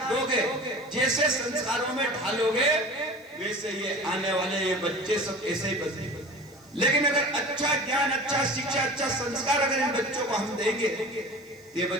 दोगे, जैसे संस्कारों में ढालोगे, वैसे ये आने वाले ये बच्चे सब ऐसे ही बने। लेकिन अगर अच्छा ज्ञान, अच्छा शिक्षा, अच्छा संस्कार अगर इन बच्चों को हम देंगे, ये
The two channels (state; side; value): noise; left; hiss, 29 dB below the sound